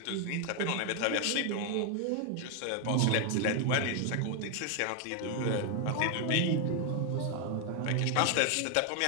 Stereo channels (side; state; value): both; different; correlation 0.01